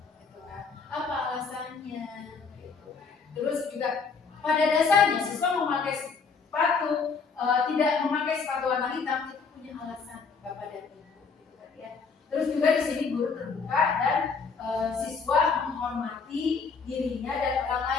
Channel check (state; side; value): quieter; right; 5.1 dB